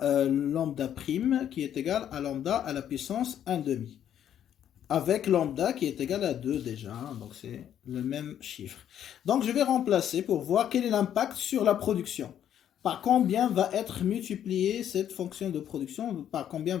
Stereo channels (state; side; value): quieter; right; 10.1 dB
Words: lambda prime qui est égal à lambda à la puissance 1/2. Avec lambda qui est égal à 2 déjà, hein, donc c'est le même chiffre. Donc, je vais remplacer pour voir quel est l'impact sur la production. Par combien va être multipliée cette fonction de production, par combien